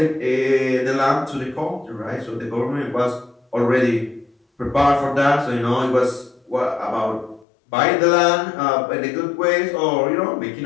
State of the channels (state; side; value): drops out; right; at 7.5 s